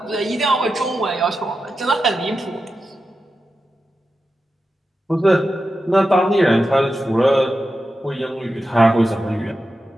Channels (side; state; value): both; normal; correlation 0.90